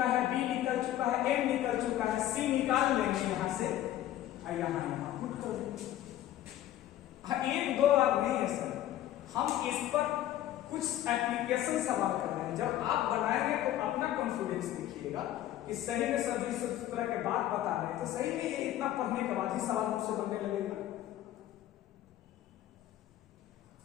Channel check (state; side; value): quieter; right; 13.0 dB